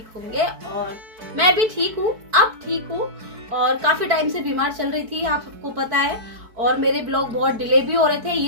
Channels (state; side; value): late; left; 4.6 ms